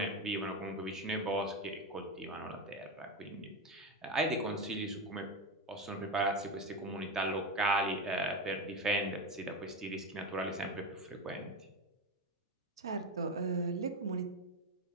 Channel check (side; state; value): both; normal; correlation 0.18